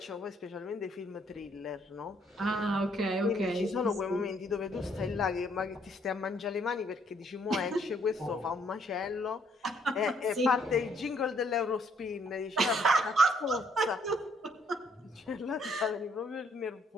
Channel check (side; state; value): both; normal; correlation 0.68